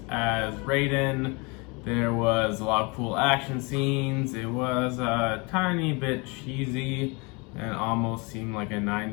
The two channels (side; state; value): right; quieter; 28.9 dB